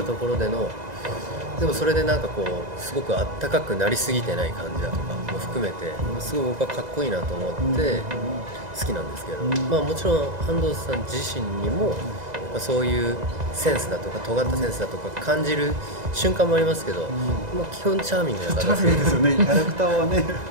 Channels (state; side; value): late; left; 2.0 ms